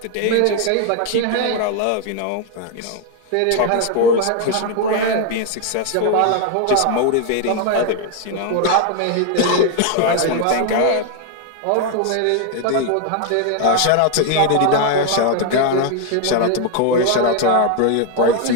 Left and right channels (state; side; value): different; both; correlation 0.01